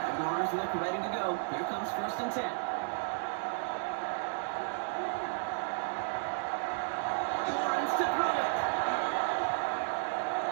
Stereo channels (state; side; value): silent; left; digital silence